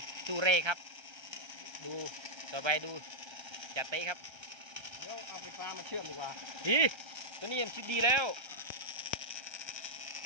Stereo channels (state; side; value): late; left; 1.3 ms